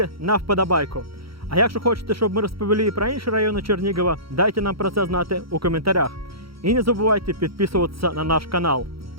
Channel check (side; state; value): left; late; 0.75 ms